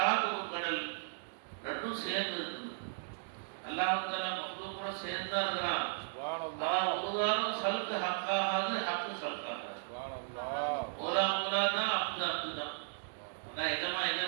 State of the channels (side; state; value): left; silent; digital silence